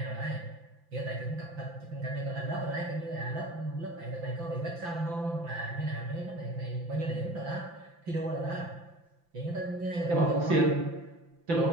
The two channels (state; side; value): late; left; 5.9 ms